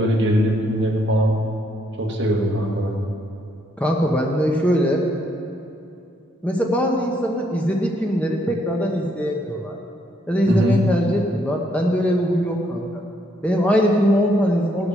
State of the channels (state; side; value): normal; both; correlation 0.72